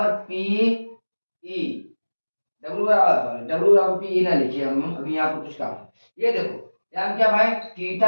पी ई, W बराबर पी ई ना लिखिए हम अभी यहाँ पर कुछ काम है। ये देखो यहाँ क्या भाई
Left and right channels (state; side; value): inverted; both; correlation -1.00